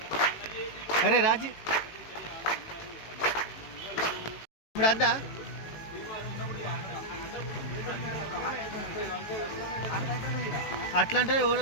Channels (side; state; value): right; late; 18 ms